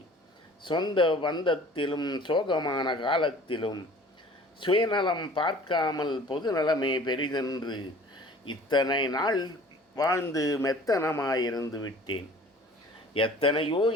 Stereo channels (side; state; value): both; normal; correlation 0.48